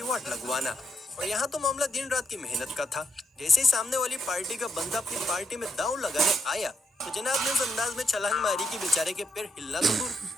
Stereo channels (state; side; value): normal; both; correlation 0.78